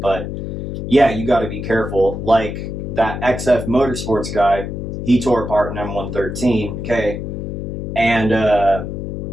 yeah, you got to be careful. Like that XF Motorsports guy, he tore apart an M113, okay? And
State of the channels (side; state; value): left; noise; hum, 5 dB below the sound